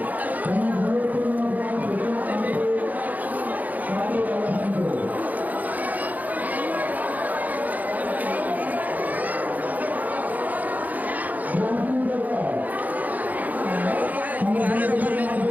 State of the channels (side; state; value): left; late; 0.080 ms